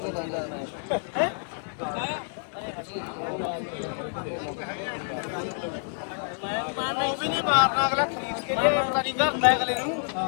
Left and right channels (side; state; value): right; silent; digital silence